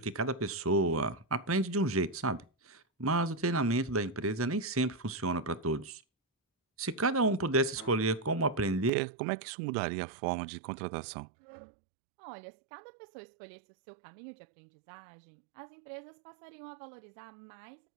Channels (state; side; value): drops out; left; at 8.9 s